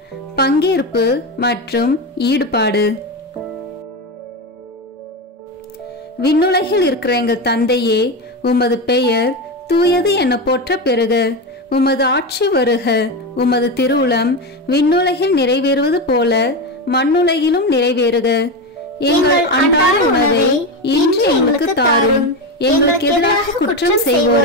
பங்கேற்பு மற்றும் ஈடுபாடு. விண்ணுலகில் இருக்கிற எங்கள் தந்தையே, உமது பெயர் தூயது என போற்ற பெறுக. உமது ஆட்சி வருக. உமது திருவுளம் விண்ணுலகில் நிறைவேறுவது போல மண்ணுலகிலும் நிறைவேறுக. எங்கள் அன்றாட உணவை இன்று எங்களுக்கு தாரும். எங்களுக்கு எதிராக குற்றம்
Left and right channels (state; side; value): normal; both; correlation 0.16